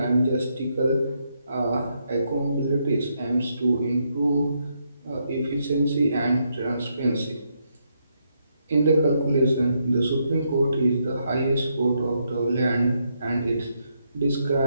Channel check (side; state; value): both; inverted; correlation -0.78